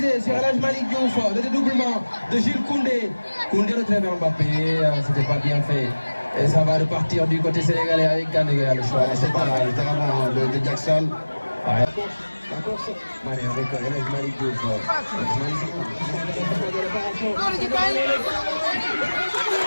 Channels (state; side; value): inverted; both; correlation -1.00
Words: sur El Malick Diouf. Le dédoublement de Jules Koundé. Koundé retrouve Mbappé. C'était pas bien fait. Et ça va repartir du côté sénégalais avec Gana le choix. C'est pas littéralement de Jackson. Ouais. La course. Mané avec El Malick Diouf.